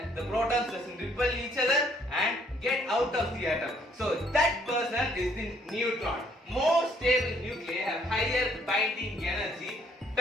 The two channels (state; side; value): normal; both; correlation 0.65